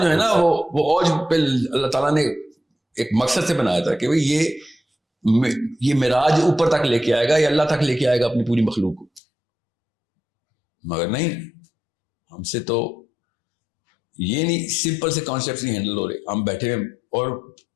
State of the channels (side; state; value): right; drops out; at 9.2 s